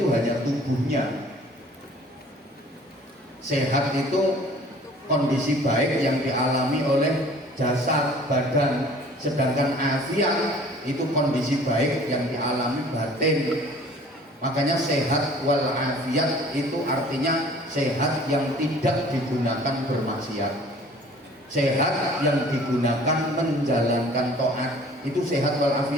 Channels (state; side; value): normal; both; correlation 0.50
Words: hanya tubuhnya. Sehat itu kondisi baik yang dialami oleh jasad, badan. Sedangkan afiat itu kondisi baik yang dialami batin. Makanya sehat wal afiat itu artinya sehat yang tidak digunakan bermaksiat, sehat yang digunakan menjalankan taat, itu sehat wal